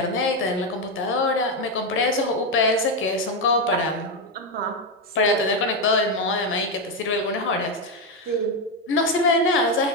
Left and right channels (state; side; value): normal; both; correlation 0.07